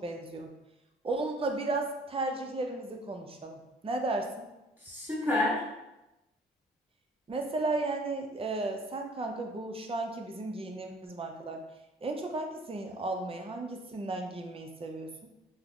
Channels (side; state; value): both; normal; correlation 0.53